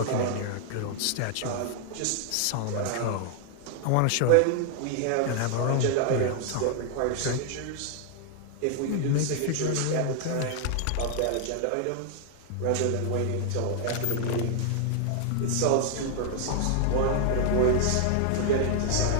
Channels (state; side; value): different; both; correlation 0.00